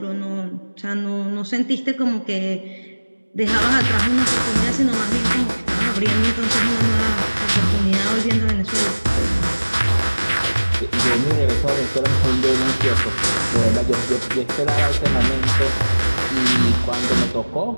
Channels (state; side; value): inverted; both; correlation -1.00